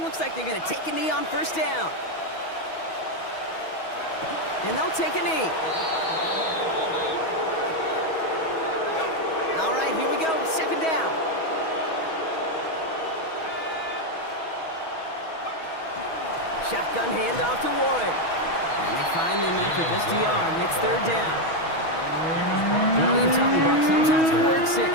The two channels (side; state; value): right; late; 6.2 ms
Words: Looks like they're going to take a knee on 1st down. And they'll take a knee. All right, here we go. 2nd down. Shotgun handoff to Warren. And they find him after just a yard. It's 3rd down. Well, you tell me, Brock, sometimes it works,